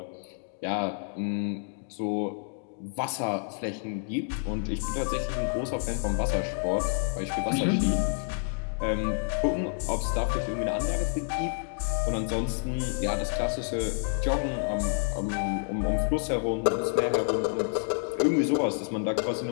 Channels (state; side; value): silent; right; 59 dB below the other